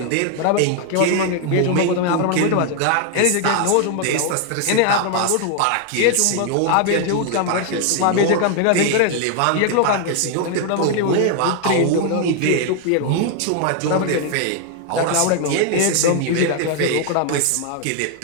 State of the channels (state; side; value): different; both; correlation 0.00